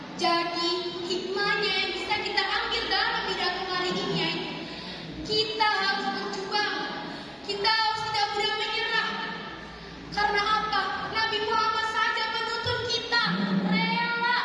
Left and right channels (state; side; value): identical; both; correlation 1.00